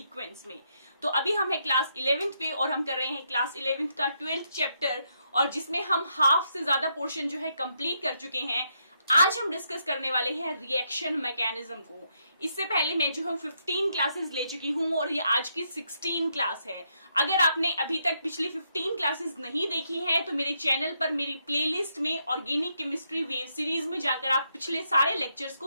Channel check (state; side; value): inverted; both; correlation -0.78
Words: में। तो अभी हम है क्लास 11th पे और हम कर रहे हैं क्लास 11th का 12th चैप्टर, और जिसमें हम हाफ से ज्यादा पोर्शन जो है कंप्लीट कर चुके हैं। आज हम डिस्कस करने वाले हैं रिएक्शन मैकेनिज्म को। इससे पहले मैं जो हूँ 15 क्लासेस ले चुकी हूँ और ये आज की 16 क्लास है। अगर आपने अभी तक पिछली 15 क्लासेस नहीं देखी हैं तो मेरे चैनल पर मेरी प्लेलिस्ट में ऑर्गेनिक केमिस्ट्री वेव सीरीज में जाकर आप पिछले सारे लेक्चर्स